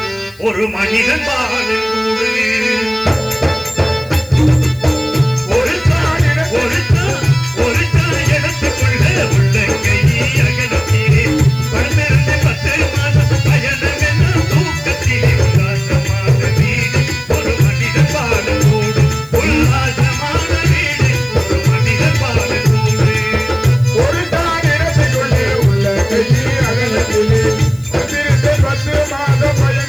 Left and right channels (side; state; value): left; noise; hiss, 27 dB below the sound